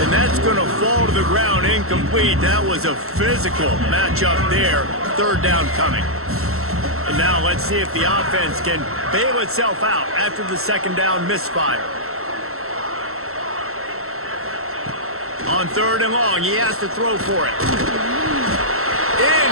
And that's going to fall to the ground incomplete. That was a physical matchup there. Third down coming. And now let's see if the offense can bail itself out after the second down misfire. On third and long, he has to throw for it.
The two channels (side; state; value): left; late; 0.63 ms